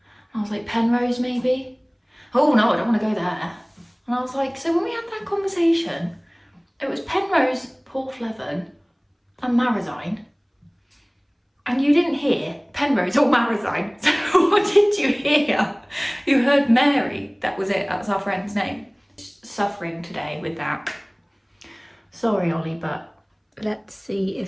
And I was like, Penrose maybe? Oh no, I don't want to go there. And I was like, so when we had that conversation, it was Penrose, Porthleven, and Marazion, and you didn't hear Penrose or Marazion. So what did you hear? You heard Mary. That was it. That's our friend's name. Suffering today with that. Sorry, Ollie, but let's see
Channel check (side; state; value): both; identical; correlation 1.00